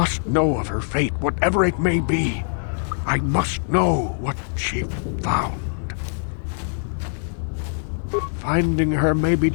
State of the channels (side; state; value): right; silent; digital silence